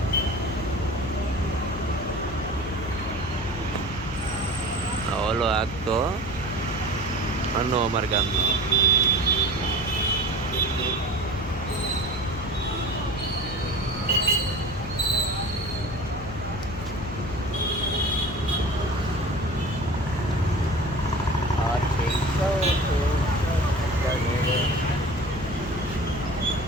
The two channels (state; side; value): noise; left; hum, 11 dB below the sound